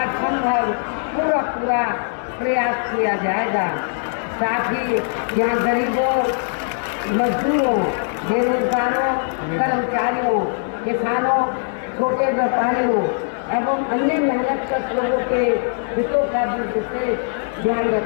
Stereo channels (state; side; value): silent; right; 62 dB below the other